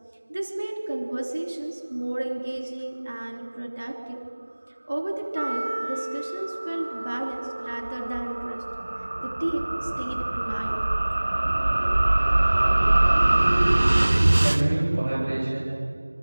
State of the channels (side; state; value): both; inverted; correlation -1.00